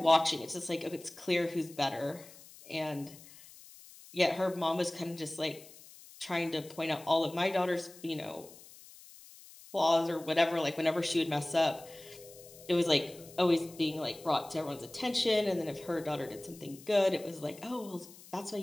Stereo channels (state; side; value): noise; left; hiss, 20 dB below the sound